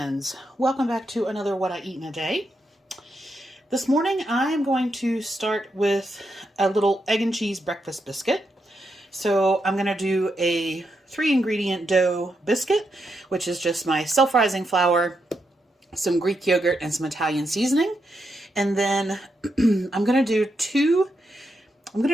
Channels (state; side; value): normal; both; correlation 0.83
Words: Welcome back to another What I Eat in a Day. This morning I am going to start with a little egg and cheese breakfast biscuit. So I'm going to do a 3-ingredient dough biscuit, which is just my self-rising flour, some Greek yogurt, and some Italian seasoning. And then I'm going to